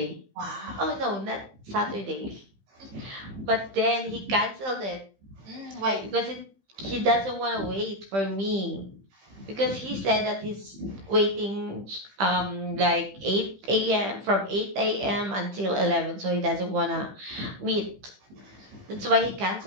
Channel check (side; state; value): left; late; 15 ms